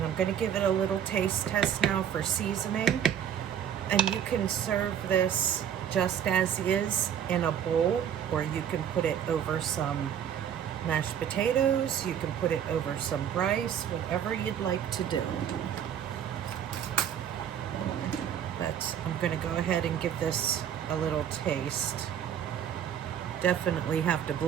I'm going to give it a little taste test now for seasoning. And you can serve this just as is in a bowl, or you can put it over some mashed potatoes, you can put it over some rice, whatever you'd like to do. But right, I'm gonna go ahead and give this a little taste. Definitely have to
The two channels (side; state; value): left; quieter; 9.2 dB